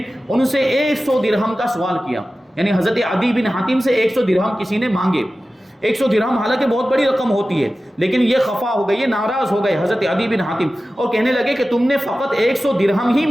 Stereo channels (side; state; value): both; normal; correlation 0.95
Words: ان سے 100 درہم کا سوال کیا، یعنی حضرت عدی بن حاتم سے 100 درہم کسی نے مانگے۔ 100 درہم حالانکہ بہت بڑی رقم ہوتی ہے، لیکن یہ خفا ہو گئے، یہ ناراض ہو گئے حضرت عدی بن حاتم اور کہنے لگے کہ تم نے فقط 100 درہم ہی